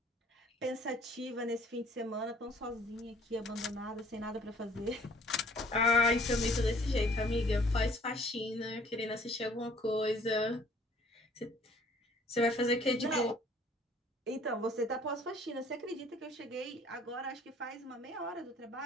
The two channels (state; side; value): normal; both; correlation 0.57